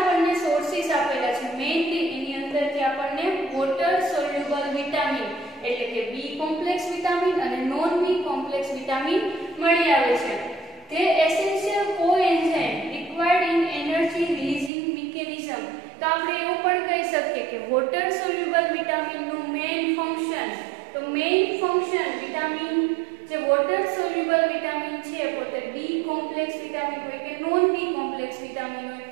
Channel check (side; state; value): left; drops out; at 14.7 s